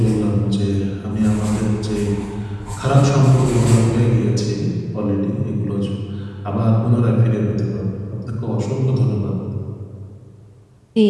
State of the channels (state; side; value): identical; both; correlation 1.00